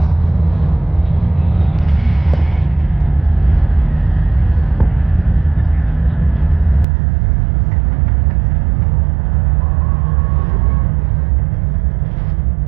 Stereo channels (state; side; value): drops out; left; at 6.9 s